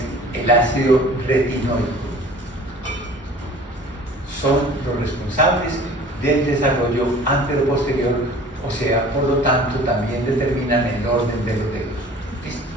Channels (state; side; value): normal; both; correlation 0.46